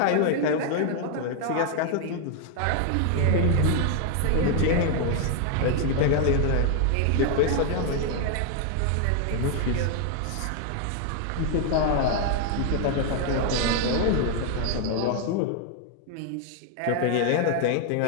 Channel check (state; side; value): different; both; correlation 0.00